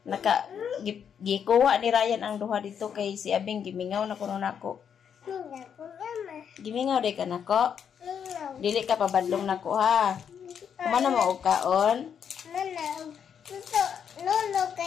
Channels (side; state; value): right; quieter; 7.8 dB